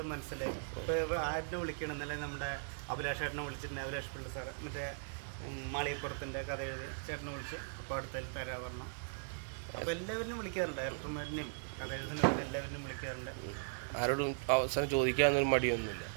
മനസ്സിലായി. ഇപ്പോൾ ആരിനെ വിളിക്കണം എന്നല്ലേ, നമ്മുടെ അഭിലാഷ് ചേട്ടനെ വിളിച്ചിട്ടുണ്ട്. അഭിലാഷ് പിള്ള സാറ് മറ്റേ മാളികപ്പുറത്തിൻ്റെ കഥ എഴുതി ചേട്ടനെ വിളിച്ച് അപ്പോൾ അടുത്തതിൽ തരാൻ പറഞ്ഞു. അപ്പോൾ എല്ലാവരും വിളിക്കാറുണ്ട്, ഡയറക്ടർമാരിനെയും കഥ എഴുതുന്നവരും എല്ലാവരും വിളിക്കാറുണ്ട്. ആരോടും അവസരം ചോദിക്കാനൊന്നും മടിയൊന്നുമില്ല.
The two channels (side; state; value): left; silent; digital silence